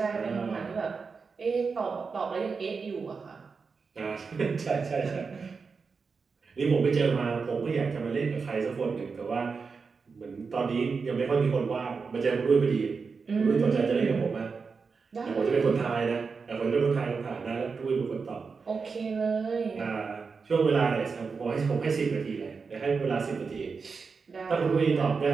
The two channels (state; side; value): quieter; left; 5.0 dB